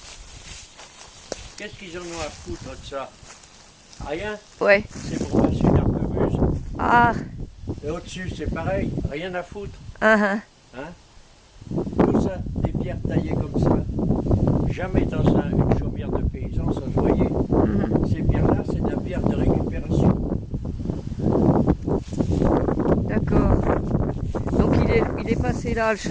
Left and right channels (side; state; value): both; identical; correlation 1.00